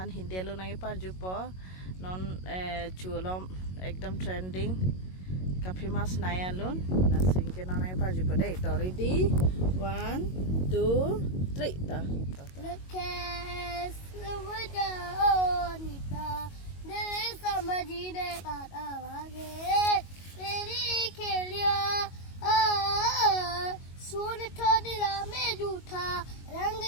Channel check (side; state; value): right; late; 22 ms